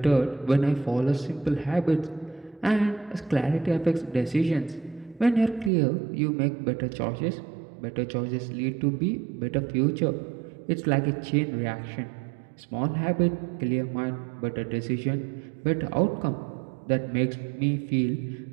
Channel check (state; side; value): drops out; left; at 5.7 s